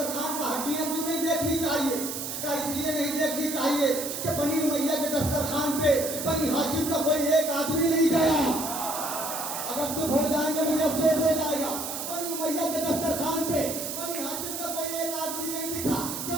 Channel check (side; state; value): right; noise; hiss, 5 dB below the sound